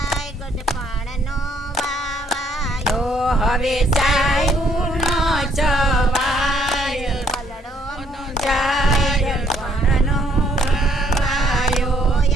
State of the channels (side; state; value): both; normal; correlation 0.67